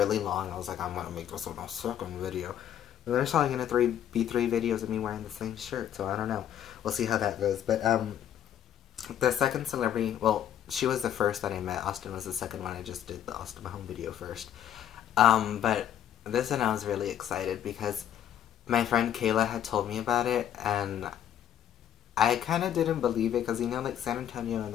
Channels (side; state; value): right; quieter; 10.3 dB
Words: long, I was like, I'm gonna make this one a second video. And there's probably gonna be three videos of me wearing the same shirt, so I don't know. We'll see how that goes. But the second celebrity, well, she was the first that I met. Austin was the second one. I just did the Austin Mahone video first. But this one I was really excited because my friend Kayla had told me about it, and I kind of didn't believe it because, you know, like San Antonio and